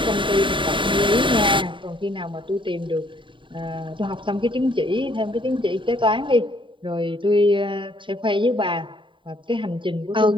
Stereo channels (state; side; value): late; left; 0.24 ms